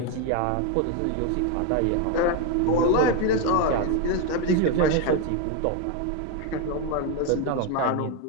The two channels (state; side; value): different; both; correlation 0.02